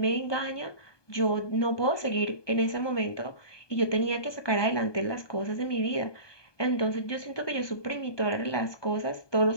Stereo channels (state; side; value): late; right; 1.2 ms